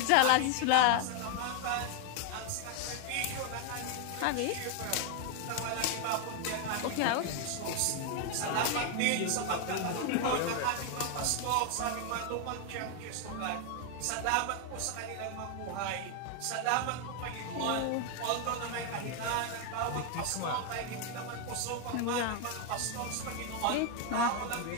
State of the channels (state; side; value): different; both; correlation 0.01